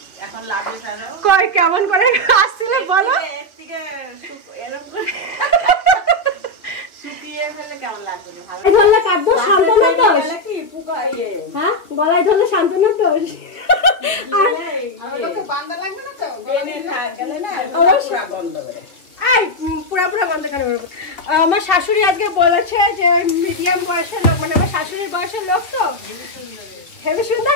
এখন লাগে কই কেমন করে আসছিল বলো? ধরলে কাটবো শান্তনার দোষ? হ্যাঁ, গলায় ধরলে শান্তনার দোষ? পুরা গন্ধ কেন? আমার শাশুড়ি আজকে বলেছে যে ওই মিডিয়াম বয়সের লোক, মানে আমার শাশুড়ির বয়সের লোক, তো হেবি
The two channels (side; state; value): right; late; 2.5 ms